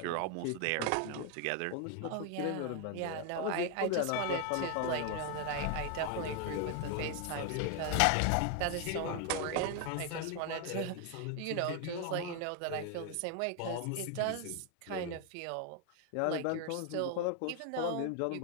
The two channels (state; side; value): different; both; correlation 0.01